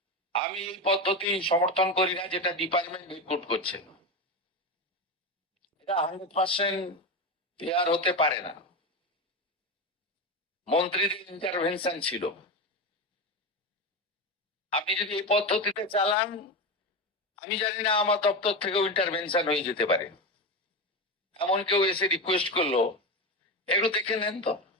আমি এই পদ্ধতি সমর্থন করি না যেটা ডিপার্টমেন্ট রিক্রুট করছে, এটা 100% ফেয়ার হতে পারে না। মন্ত্রীদের ইন্টারভেনশন ছিল। আপনি যদি এই পদ্ধতিতে চালান, আমি জানি না আমার দপ্তর থেকেও ইন্টারভেনশন হয়ে যেতে পারে। এমন কেউ এসে রিকোয়েস্ট করলো একটু দেখে নেন তো,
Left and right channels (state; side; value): normal; both; correlation 0.18